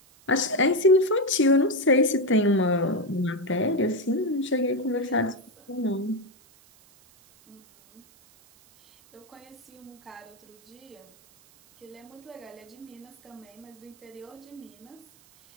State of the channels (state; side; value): noise; right; hiss, 28 dB below the sound